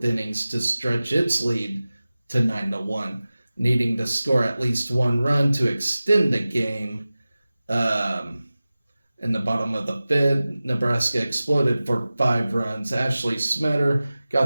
innings to stretch its lead to 9-1, needing to score at least 1 run to extend the game. In the bottom of the fifth, Nebraska exploded for 5 runs. Ashley Smetter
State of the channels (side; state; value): both; inverted; correlation -0.97